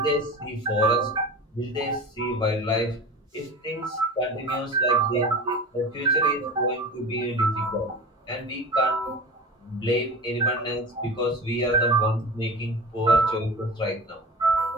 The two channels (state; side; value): normal; both; correlation 0.33